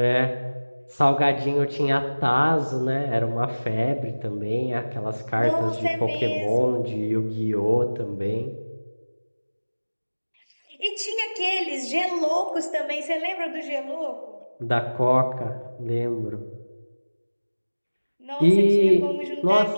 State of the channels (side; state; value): both; inverted; correlation -1.00